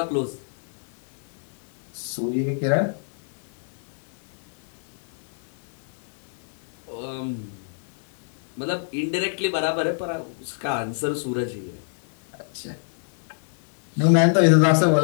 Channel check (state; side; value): silent; right; digital silence